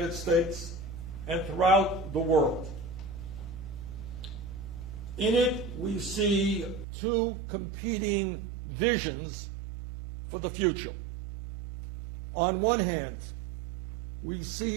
States and throughout the world. In it, we see two competing visions for the future. On one hand, we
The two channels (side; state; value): left; drops out; at 6.9 s